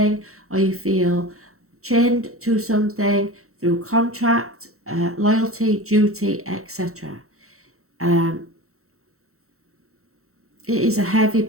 or you feel chained to something through contract, loyalty, duty, etc. it is a heavy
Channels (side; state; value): left; late; 0.63 ms